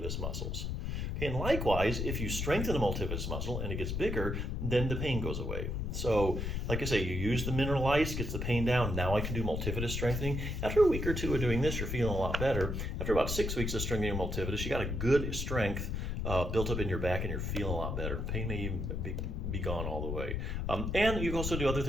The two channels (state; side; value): noise; left; rumble, 2 dB below the sound